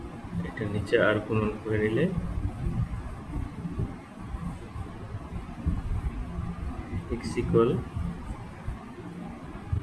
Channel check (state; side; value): identical; both; correlation 1.00